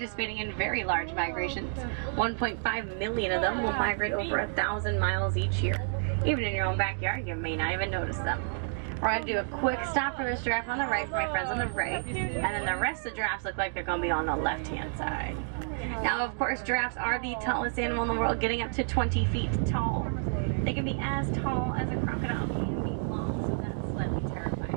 in very large migrations. 1.5 million of them will migrate over 1,000 miles each year. Even in your own backyard, you may not even notice them. We're going to do a quick stop for this giraffe on the right for my friends on the right, and then the rest of the giraffes look like they're going to be on the left-hand side. Now, of course, giraffes are the tallest animal in the world, getting up to 20 feet tall. They can be as tall as a crocodile can be long, so that's slightly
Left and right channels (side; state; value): left; silent; digital silence